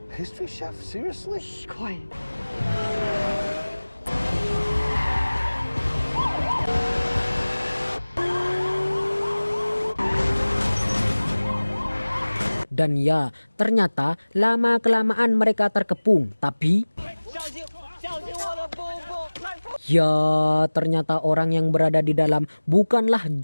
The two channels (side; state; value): both; inverted; correlation -1.00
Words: History chef? Seriously? Quiet. Dan ya, ternyata lama-kelamaan mereka terkepung. Tapi ya, ternyata orang yang berada di dalam bukanlah